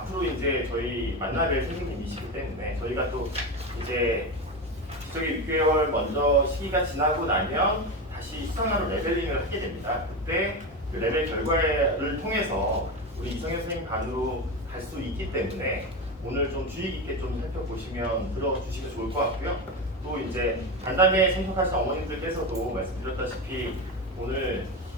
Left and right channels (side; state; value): both; normal; correlation 0.19